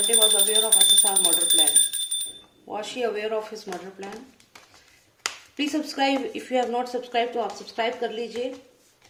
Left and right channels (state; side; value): identical; both; correlation 1.00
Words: was aware of SSR murder plan. Was she aware of his murder plan? Please subscribe, if you have not subscribe तो आप subscribe कर लीजिए।